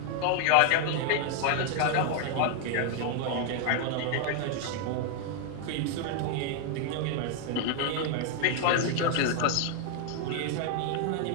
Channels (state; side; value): different; both; correlation 0.00